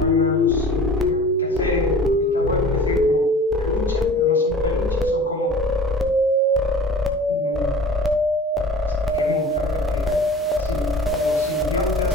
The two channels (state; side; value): normal; both; correlation 0.42